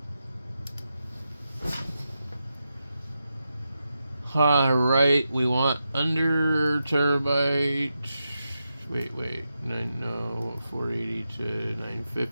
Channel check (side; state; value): both; inverted; correlation -0.89